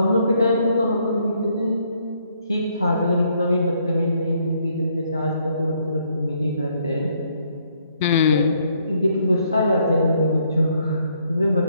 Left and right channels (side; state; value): both; inverted; correlation -0.70